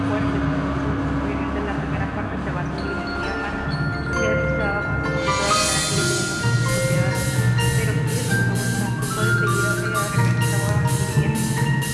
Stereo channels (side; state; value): both; identical; correlation 1.00